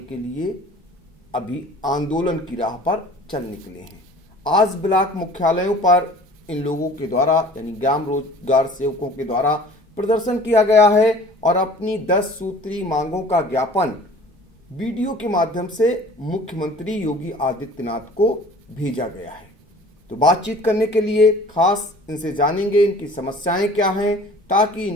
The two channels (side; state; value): both; normal; correlation 0.47